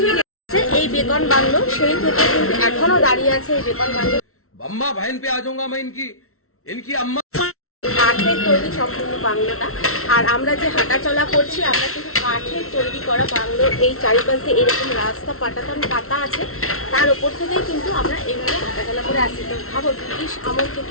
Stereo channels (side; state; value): right; late; 0.63 ms